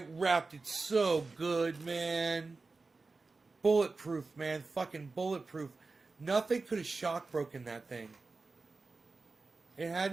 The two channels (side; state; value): left; quieter; 3.8 dB